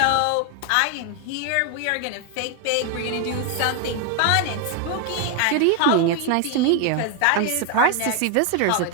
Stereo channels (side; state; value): both; different; correlation 0.01